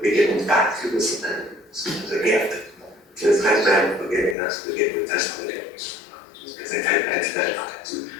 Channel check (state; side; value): drops out; right; at 4.4 s